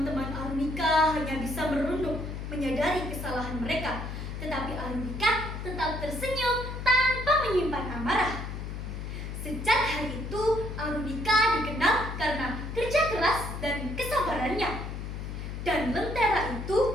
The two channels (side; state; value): left; noise; hum, 6 dB below the sound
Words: Arunika hanya bisa merunduk, menyadari kesalahan mereka. Tetapi Arunika tetap tersenyum tanpa menyimpan amarah. Sejak hari itu, Arunika dikenal karena kerja keras dan kesabarannya. Dan lentera